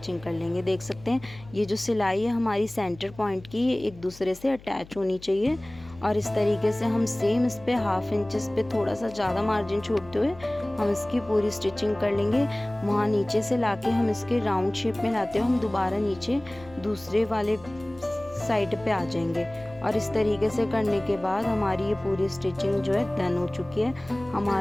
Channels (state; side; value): noise; left; hum, 20 dB below the sound